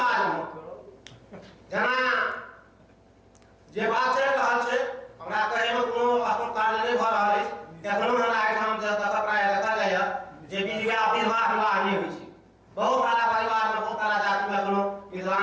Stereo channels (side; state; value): both; identical; correlation 1.00